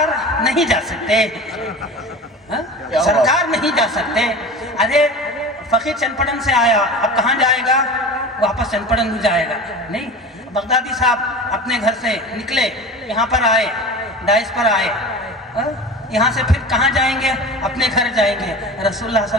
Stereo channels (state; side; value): normal; both; correlation 0.34